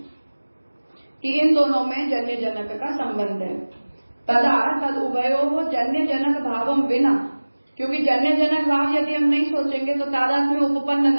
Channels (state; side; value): inverted; both; correlation -1.00